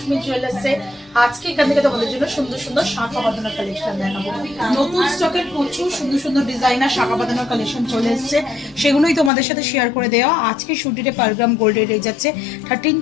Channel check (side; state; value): right; drops out; at 9.3 s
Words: জুয়েলার্সে। আজকে এখান থেকে তোমাদের জন্য সুন্দর সুন্দর শাখা বাঁধানোর কালেকশন দেখাবো। নতুন স্টকের প্রচুর সুন্দর সুন্দর ডিজাইনার শাখা বাঁধানোর কালেকশন চলে এসেছে, সেগুলোই তোমাদের সাথে শেয়ার করে দেওয়া। আজকে শুটিতে পার গ্রাম গোল্ড রেট যাচ্ছে